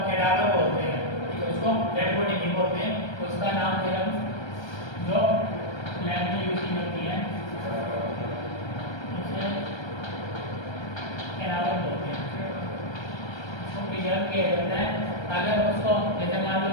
कैडावर बोलते हैं, ठीक है, उसको डेड बॉडी नहीं बोलते हैं, उसका नाम फिर हम जो लैब में यूज की जाती है उसे कैडावर बोलते हैं, उसको प्रिजर्व किया जाता है। अगर उसको जैसे मान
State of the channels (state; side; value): late; right; 1.3 ms